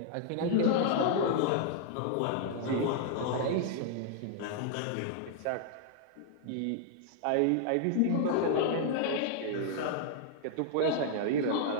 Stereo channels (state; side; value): different; both; correlation -0.01